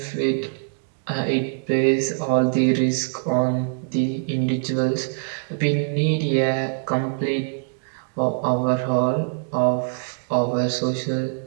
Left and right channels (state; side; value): silent; left; digital silence